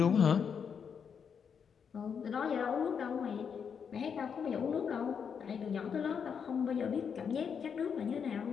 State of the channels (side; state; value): right; quieter; 6.9 dB